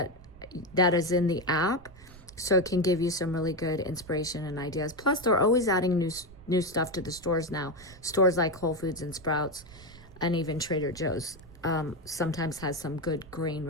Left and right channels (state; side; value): noise; right; rumble, 20 dB below the sound